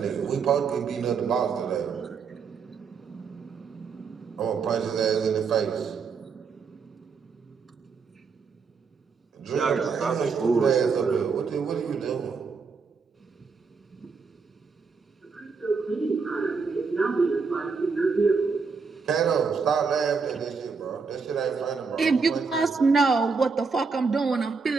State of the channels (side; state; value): left; quieter; 5.1 dB